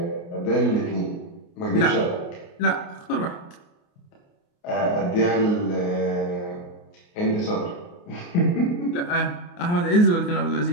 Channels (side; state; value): right; late; 29 ms